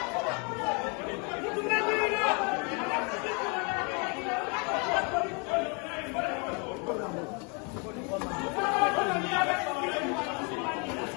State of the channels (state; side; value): quieter; right; 34.1 dB